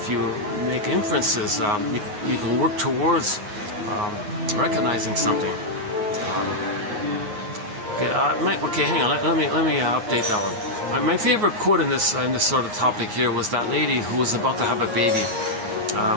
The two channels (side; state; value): left; late; 9.5 ms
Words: you make inferences, you can work towards recognizing something. Okay, hang on. Let me update that one. My favorite quote in this sort of topic here was that lady who was about to have a baby.